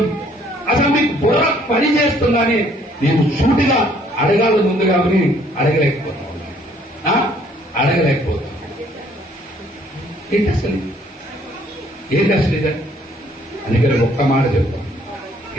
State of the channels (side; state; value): both; normal; correlation 0.62